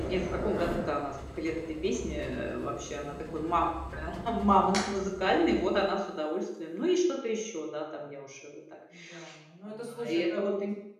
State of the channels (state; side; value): identical; both; correlation 1.00